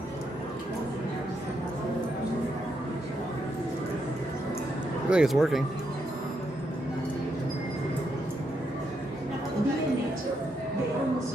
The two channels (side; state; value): both; normal; correlation 0.79